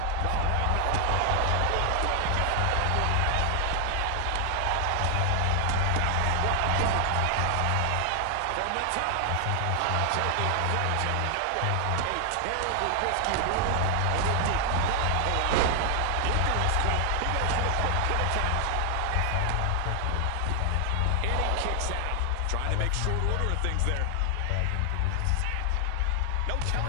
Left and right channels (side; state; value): both; different; correlation 0.00